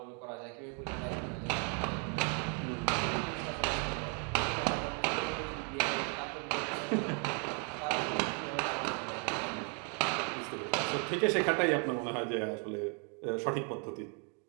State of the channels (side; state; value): left; quieter; 38.4 dB